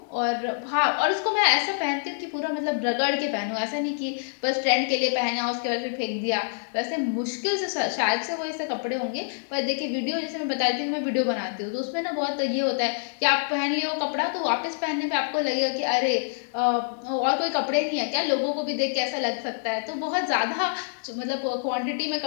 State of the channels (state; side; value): silent; right; digital silence